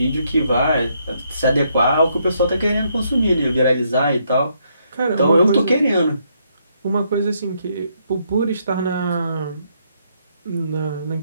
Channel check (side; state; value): both; inverted; correlation -0.74